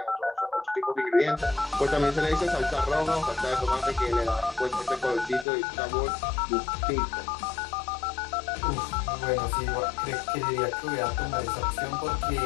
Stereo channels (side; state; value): right; drops out; at 5.5 s